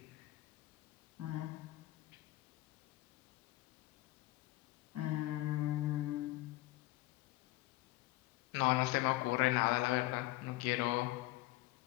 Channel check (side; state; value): right; quieter; 18.6 dB